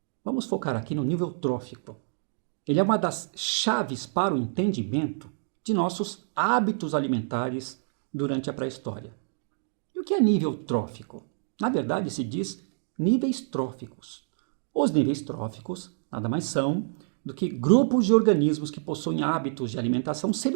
vamos focar aqui no nível trófico. Ele é uma das chaves para o entendimento de nossos hábitos alimentares durante a pré-história. E o que é nível trófico? Na verdade, se diz níveis tróficos. Os níveis tróficos nada mais são do que grupos de organismos que possuem hábitos de alimentação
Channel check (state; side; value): silent; left; digital silence